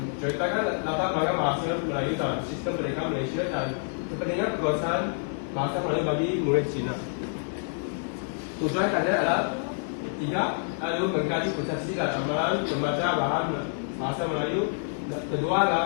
latar belakang bahasa Melayu dalam sistem pendidikan Malaysia dan kepentingan penguasaan bahasa Melayu bagi murid Cina. Tujuan kajian adalah tidak lalu mengkaji persepsi dan amalan membaca bahan bahasa Melayu. Kedua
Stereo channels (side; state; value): right; silent; digital silence